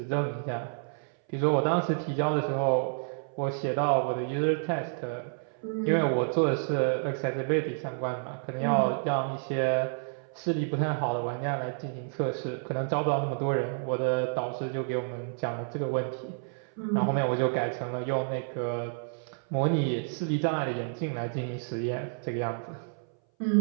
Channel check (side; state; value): left; silent; 58 dB below the other